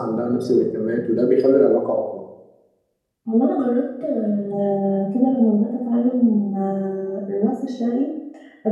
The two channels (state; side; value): identical; both; correlation 1.00